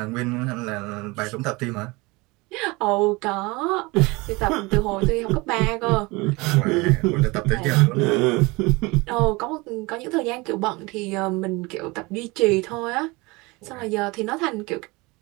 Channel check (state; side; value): quieter; left; 24.3 dB